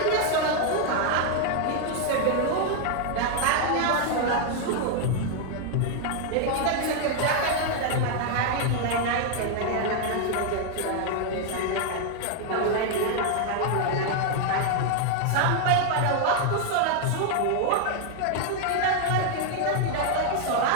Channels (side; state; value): both; different; correlation 0.00